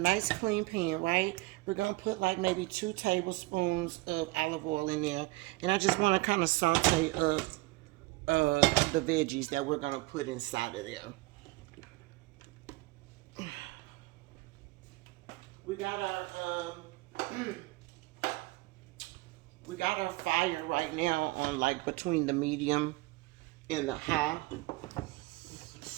clean pan, right? We're gonna put like maybe 2 tablespoons of olive oil in there. And I just wanna kind of saute up the veggies that we're gonna put inside of there. We got our fire right now on like between the medium and the high.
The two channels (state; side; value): quieter; left; 21.9 dB